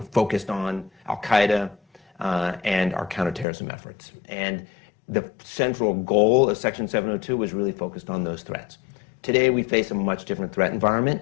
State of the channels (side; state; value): right; drops out; at 3.5 s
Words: focused on Al-Qaeda and our counterterrorism efforts. And the central goal of Section 702 was really focused on those threats. Today, we face a much different threat